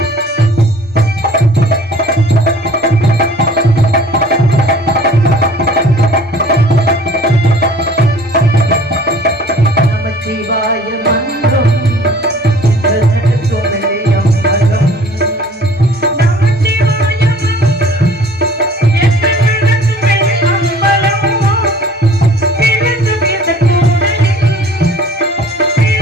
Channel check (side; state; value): both; normal; correlation 0.50